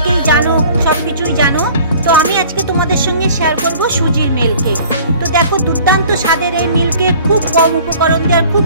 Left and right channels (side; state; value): both; inverted; correlation -0.49